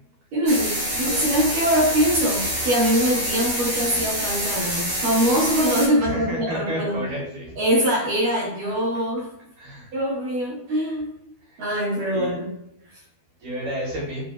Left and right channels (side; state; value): left; late; 12 ms